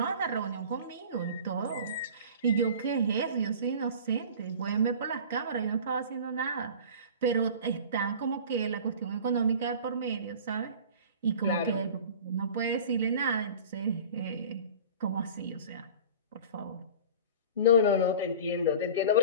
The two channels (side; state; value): both; inverted; correlation -0.40